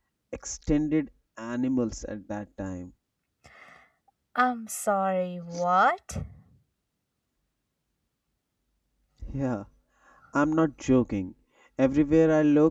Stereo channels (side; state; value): both; identical; correlation 1.00